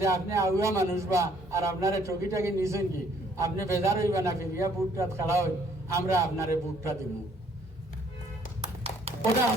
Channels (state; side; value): normal; both; correlation 0.63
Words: আপনি আউয়া মানুষ বা আর আপনারা টকিটাকে নিছেন কি, আপনি বেজার হইবা না, ফিরিয়া বুটটা খেলা হই, আমরা আপনারে বুটটা দিব। ওটা